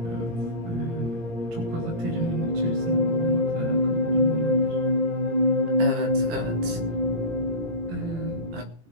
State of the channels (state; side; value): late; left; 18 ms